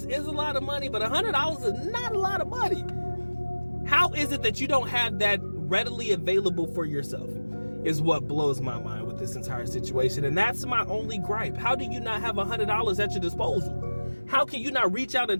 is a lot of money, but $100 is not a lot of money. How is it that you don't have that readily available for yourself? Is what blows my mind with this entire situation. And that's my only gripe. How do you not have $100 at your disposal? How can you not reach out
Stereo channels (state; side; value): inverted; both; correlation -1.00